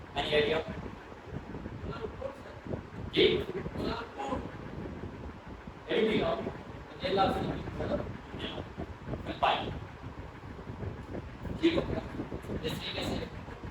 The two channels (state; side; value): identical; both; correlation 1.00